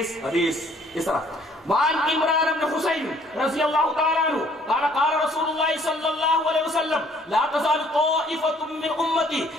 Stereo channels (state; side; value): normal; both; correlation 0.60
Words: حدیث اس طرح وعن عمران بن حسین رضی اللہ تعالی عنہ قال قال رسول اللہ صلی اللہ علیہ وسلم لا تزال طائفة من امتی